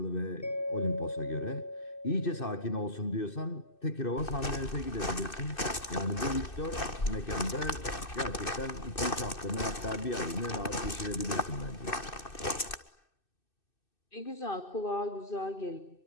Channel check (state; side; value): late; right; 2.6 ms